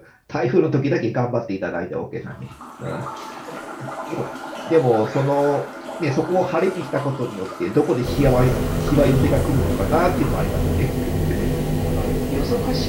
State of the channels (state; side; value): identical; both; correlation 1.00